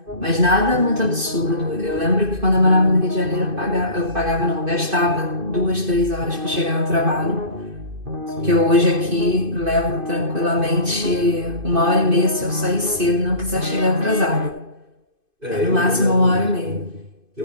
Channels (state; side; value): late; left; 2.5 ms